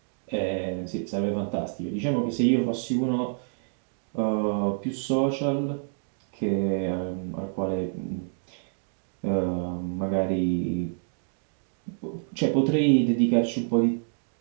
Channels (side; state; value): left; silent; digital silence